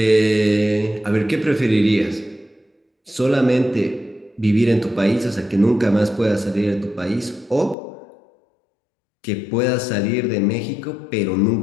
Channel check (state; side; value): drops out; right; at 7.8 s